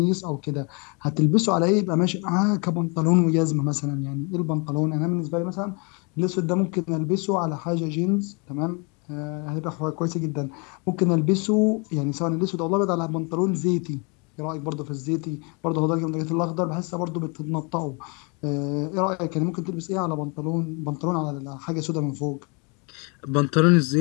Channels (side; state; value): right; quieter; 32.7 dB